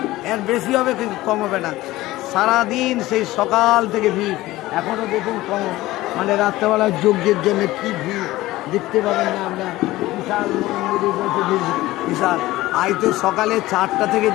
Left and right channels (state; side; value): quieter; right; 17.4 dB